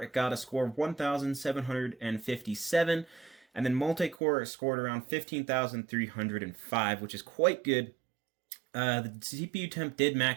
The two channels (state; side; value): drops out; left; at 4.2 s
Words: got a score of 1,757, and then multi-core scored around 15,305, which is quite good. The CPU temp did